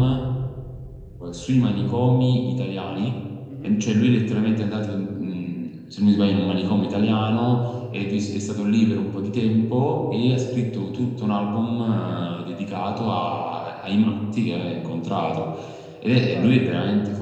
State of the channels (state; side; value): identical; both; correlation 1.00